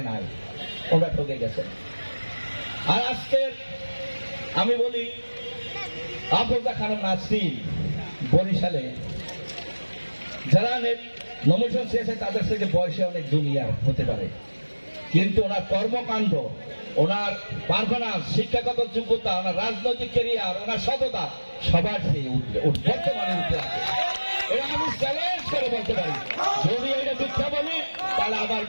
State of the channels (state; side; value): inverted; both; correlation -1.00